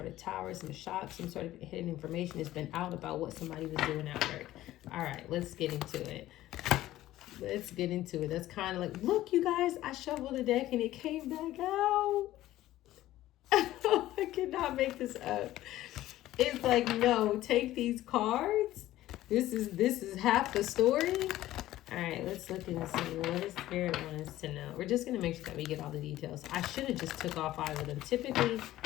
of tower, some shock, some sort of hidden information has been out about what somebody was doing at work. All right, let's get into it. Let's get into it. That's kind of like, look, you guys, I shuffled the deck and it came back out. I cannot make this up. It's like, no, take these cards. This is half the story. All right, let's look and see what does Spirit want us to know. We're just going to make sure that we get all the details. I should have just took all 5 of them. Typically,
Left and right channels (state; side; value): quieter; right; 14.9 dB